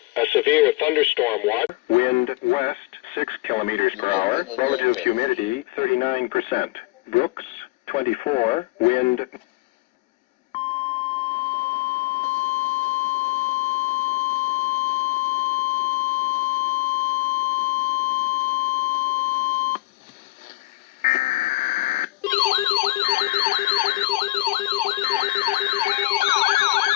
A severe thunderstorm watch. Wind west 6 kilometers per hour. Relative humidity 39%. Brooks 24. Wind.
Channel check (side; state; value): right; quieter; 20.5 dB